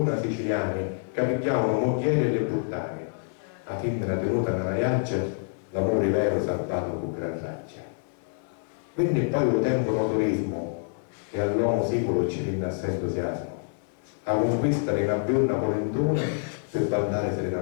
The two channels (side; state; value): right; silent; 58 dB below the other